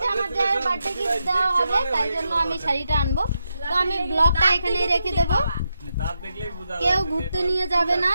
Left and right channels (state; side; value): inverted; both; correlation -0.85